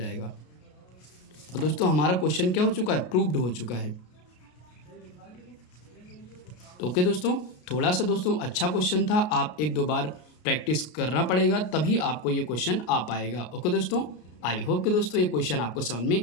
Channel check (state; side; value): late; right; 33 ms